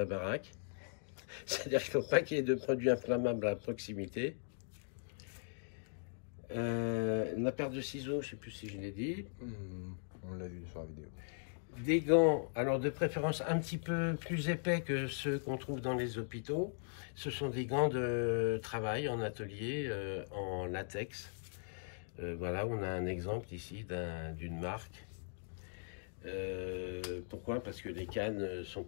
baraque. C'est-à-dire qu'il ne faut pas qu'il y ait de produits inflammables à proximité. La paire de ciseaux, je ne sais plus si je l'ai dit. On l'a vu sur la vidéo. Des gants, alors de préférence un petit peu plus épais que ceux qu'on trouve dans les hôpitaux. Ce sont des gants de travail en atelier en latex. Voilà, on a un exemple ici d'une marque. Pourquoi? Parce que les cannes ne sont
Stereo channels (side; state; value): right; silent; digital silence